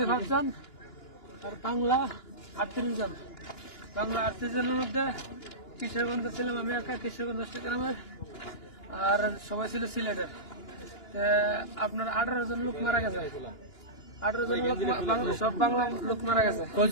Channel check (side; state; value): right; late; 2.9 ms